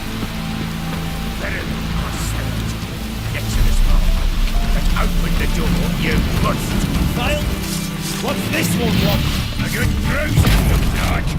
Get to this motherfucker. Let's open the door, you bust. Kyle, what's this one want? A good bruising, looks like.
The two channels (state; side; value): identical; both; correlation 1.00